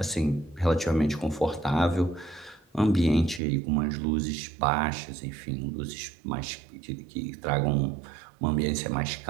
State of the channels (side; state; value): left; drops out; at 3.4 s